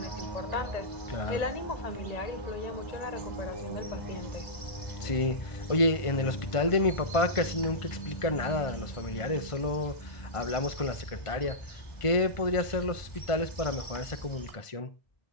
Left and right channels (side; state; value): right; late; 1.5 ms